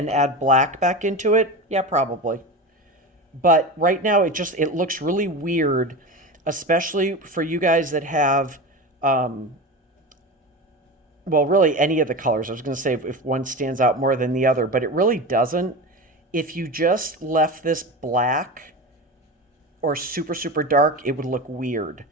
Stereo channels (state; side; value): normal; both; correlation 0.26